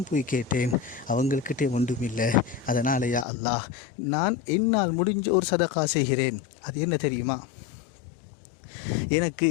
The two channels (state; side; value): drops out; right; at 3.2 s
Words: போய் கேட்டேன், அவங்கள்கிட்டே ஒன்றும் இல்லை. அதனால் யா அல்லாஹ், நான் என்னால் முடிஞ்ச ஒரு சதகா செய்கிறேன். அது என்ன தெரியுமா? எனக்கு